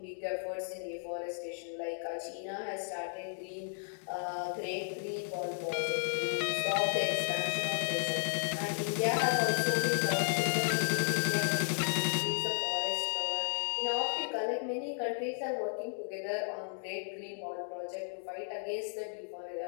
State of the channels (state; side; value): silent; right; digital silence